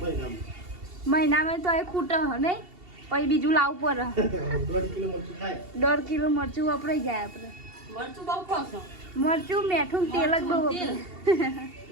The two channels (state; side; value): late; left; 2.7 ms